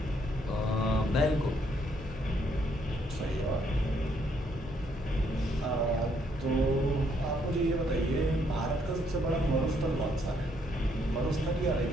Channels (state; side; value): normal; both; correlation 0.71